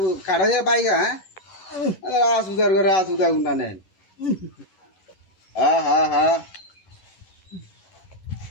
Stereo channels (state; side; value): late; right; 11 ms